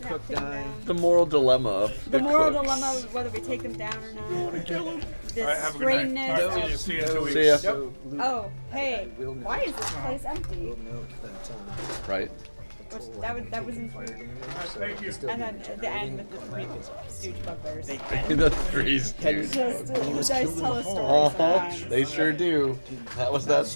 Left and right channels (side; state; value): both; inverted; correlation -1.00